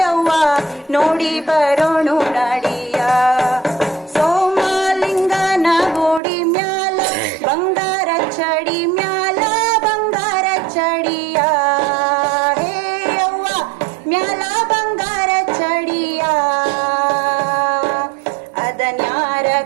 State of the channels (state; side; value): drops out; left; at 6.2 s